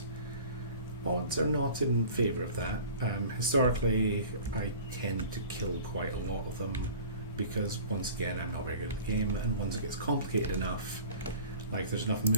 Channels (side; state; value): both; inverted; correlation -0.43